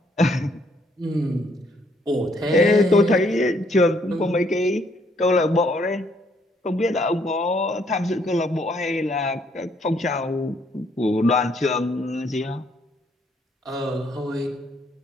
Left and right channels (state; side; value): normal; both; correlation 0.68